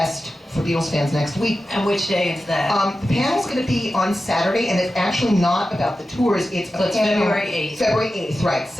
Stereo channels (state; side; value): normal; both; correlation 0.93